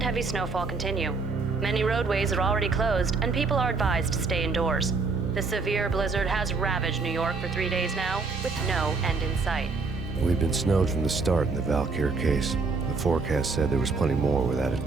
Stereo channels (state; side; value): quieter; left; 4.2 dB